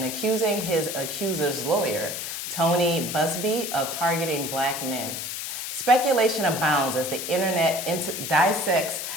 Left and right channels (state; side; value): noise; left; hiss, 5 dB below the sound